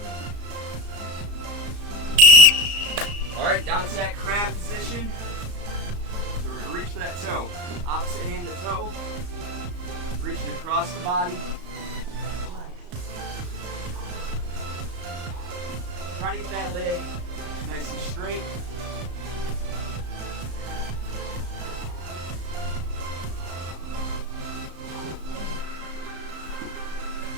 Alright, down to that crab position. So we're going to reach for that toe. Opposite hand to toe. Reaching across the body. Trying to get that leg nice and straight.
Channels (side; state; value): left; late; 34 ms